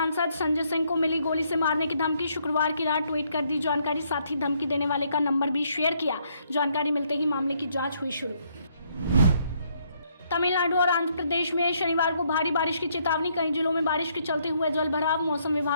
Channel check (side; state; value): both; inverted; correlation -0.71